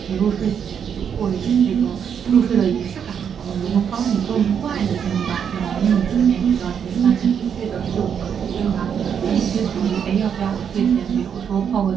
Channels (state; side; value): quieter; left; 7.8 dB